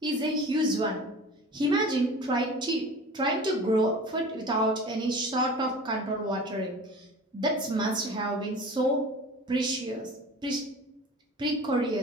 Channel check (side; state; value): both; normal; correlation 0.39